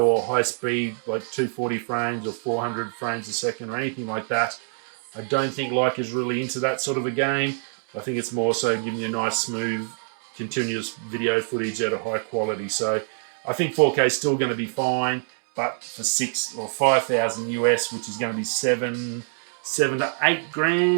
or high speed like 240 frames or 400 frames a second or anything like that. I don't think Leica's really into that sort of a game. I think it's more so giving you nice, smooth, continuous video footage at a high quality. So I think 4K is still going to be fine, but for 6 or 5,000 US, which is going to be seven to 8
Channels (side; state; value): left; silent; 60 dB below the other